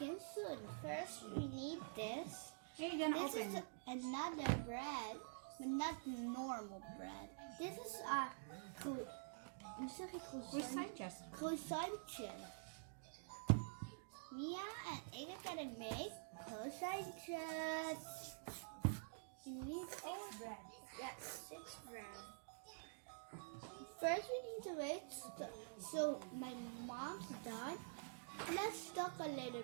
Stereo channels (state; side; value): silent; left; digital silence